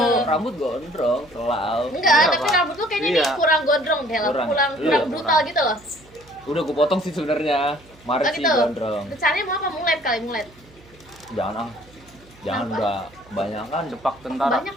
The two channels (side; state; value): right; noise; hum, 26 dB below the sound